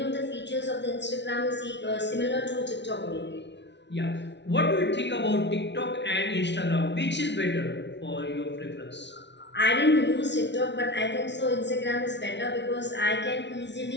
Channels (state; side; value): late; right; 0.51 ms